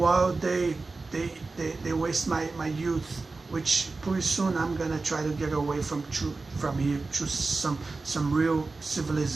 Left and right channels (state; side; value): quieter; left; 3.7 dB